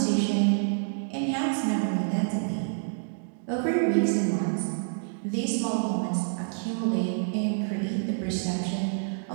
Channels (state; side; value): silent; left; digital silence